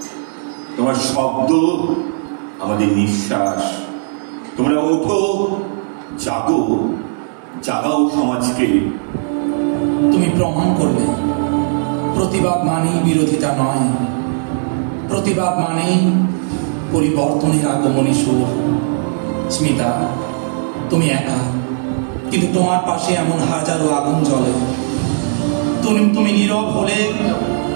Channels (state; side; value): silent; left; digital silence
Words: তোমার শব্দ আমাদের নিঃশ্বাস। তোমরা ওঠো, জাগো, জাগাও সমাজকে। তুমি প্রমাণ করলে প্রতিবাদ মানেই বিরোধিতা নয়, প্রতিবাদ মানেই পরিবর্তনের আগমনী সুর। স্মিতা, তুমি একা, কিন্তু তোমার পাশে এমন হাজারো আগুন জ্বলে। তুমি নীরব হলে